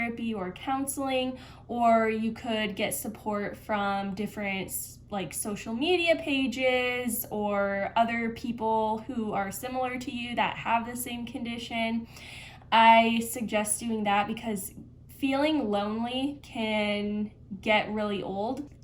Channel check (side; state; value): both; identical; correlation 1.00